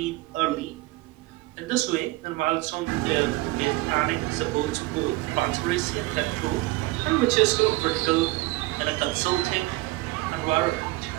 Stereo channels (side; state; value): left; quieter; 20.1 dB